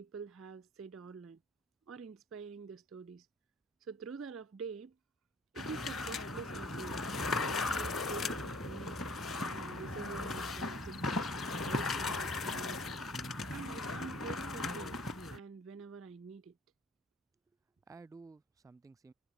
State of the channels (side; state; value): both; normal; correlation 0.53